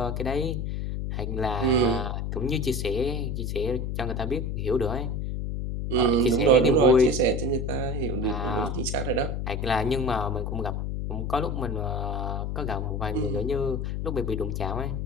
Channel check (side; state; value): left; noise; hum, 2 dB below the sound